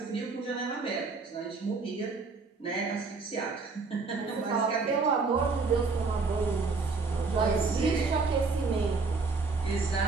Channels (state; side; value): quieter; left; 4.3 dB